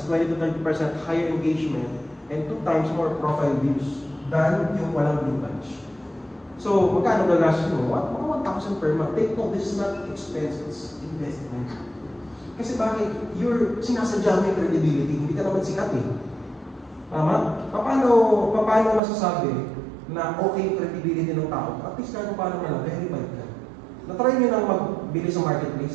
20 to 30% higher engagement and 2 times more profile views than yung walang blue badge. So, magkano gagastos mo? Mga 1,000 per month. Take note, this is not expense, it's investment. Kasi bakit? Sinasadya mo yung credibility, hindi ka naman sikat eh. Tama? Paano masasabi na okay yung credibility ng tao? At least paano man, verified ka. Natry nyo nang magbili sa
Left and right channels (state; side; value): drops out; left; at 19.0 s